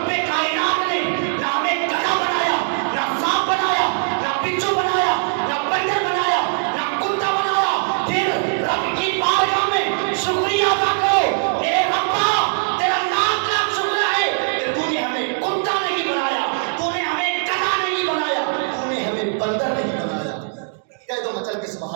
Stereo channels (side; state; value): left; silent; digital silence